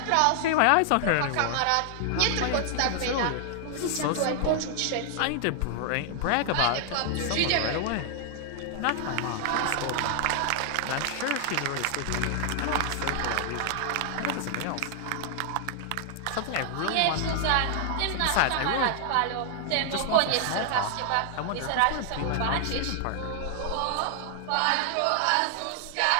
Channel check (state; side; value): different; both; correlation 0.00